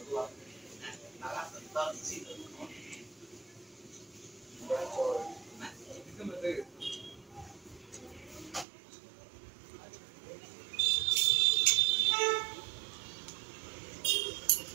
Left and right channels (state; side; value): drops out; left; at 8.7 s